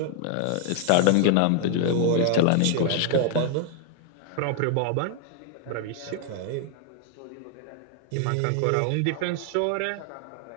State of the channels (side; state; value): both; different; correlation 0.00